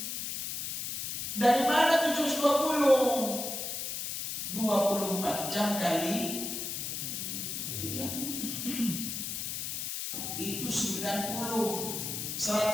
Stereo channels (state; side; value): noise; left; hiss, 4 dB below the sound